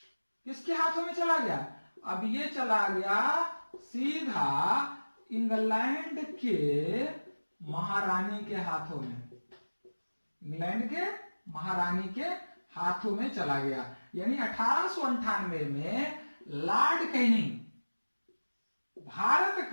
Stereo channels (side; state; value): both; inverted; correlation -1.00